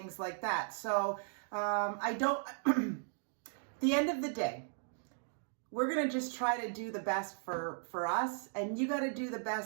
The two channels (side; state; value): left; silent; digital silence